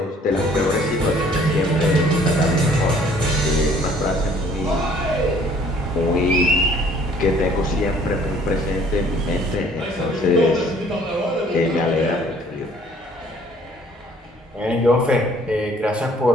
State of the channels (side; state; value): both; normal; correlation 0.57